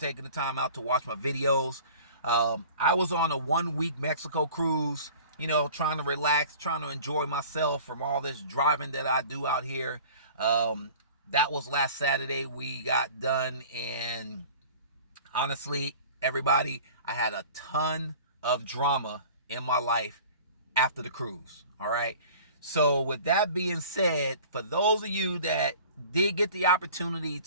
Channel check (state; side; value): inverted; both; correlation -0.44